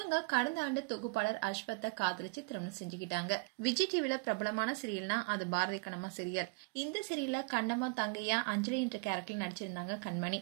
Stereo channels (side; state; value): left; quieter; 30.0 dB